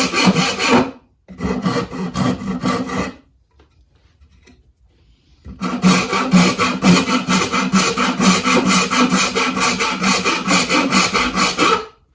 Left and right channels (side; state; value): both; identical; correlation 1.00